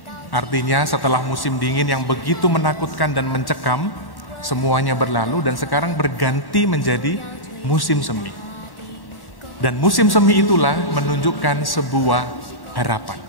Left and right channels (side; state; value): right; late; 1.1 ms